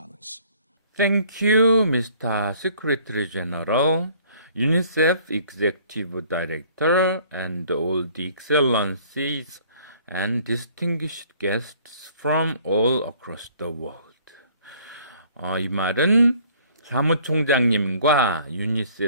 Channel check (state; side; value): inverted; both; correlation -0.56